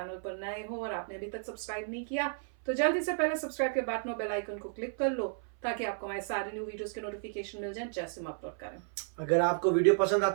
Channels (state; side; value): silent; left; 56 dB below the other